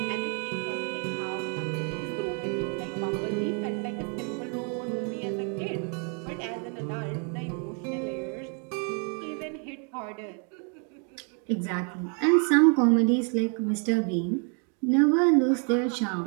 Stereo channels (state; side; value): quieter; left; 39.8 dB